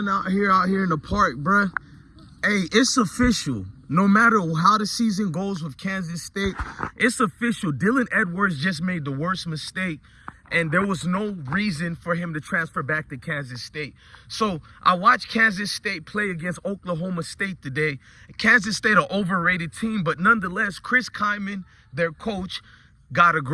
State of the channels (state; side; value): identical; both; correlation 1.00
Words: out here in the park, bro. Hey, it's official. No matter how the season goes with Kansas State, it's official. Dylan Edwards just made the worst mistake, and there was no reason for him to transfer back to Kansas State. So I watched Kansas State play against Oklahoma State today. Kansas State, an overrated team, but nonetheless, Chris Kyman, their coach, got a